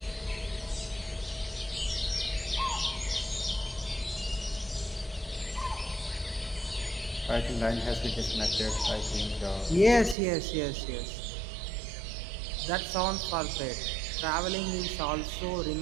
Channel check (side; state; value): left; drops out; at 10.2 s